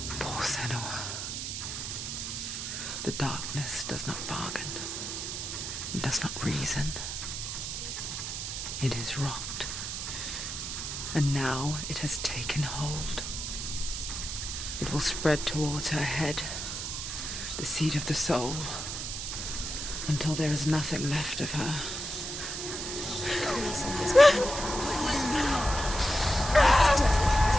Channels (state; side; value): noise; right; hiss, 5 dB below the sound